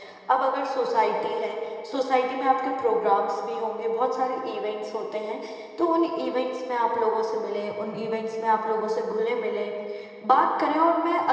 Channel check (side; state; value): both; identical; correlation 1.00